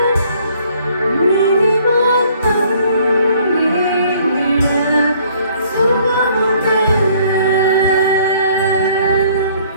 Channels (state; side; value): inverted; both; correlation -0.60